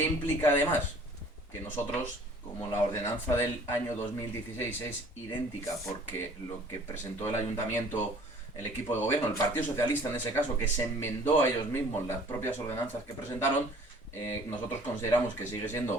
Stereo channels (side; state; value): both; normal; correlation 0.52